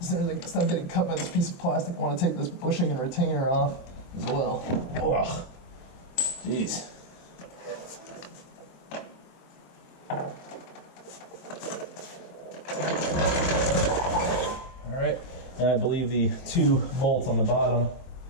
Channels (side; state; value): right; late; 23 ms